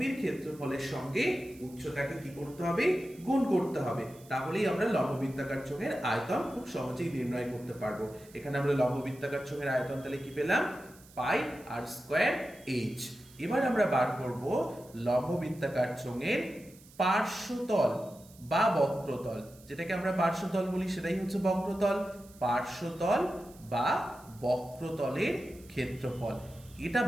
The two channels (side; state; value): right; noise; hiss, 24 dB below the sound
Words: ক্ষেত্রফলের সঙ্গে উচ্চতাকে কি করতে হবে? গুণ করতে হবে। তাহলেই আমরা লম্ব বৃত্তাকার চোঙের আয়তন খুব সহজেই নির্ণয় করতে পারবো। এখানে আমরা লম্ব বৃত্তাকার চোঙের আয়তন তাহলে কি পেলাম? পাই আর স্কয়ার এইচ। এবার আমরা বার করব লম্ব বৃত্তাকার চোঙের পার্শ্বতল বা বক্রতল। যেটাকে আমরা পার্শ্বতল বলি সেটাই হচ্ছে বক্রতল। পার্শ্বতল বা বক্রতলের ক্ষেত্রফল এটা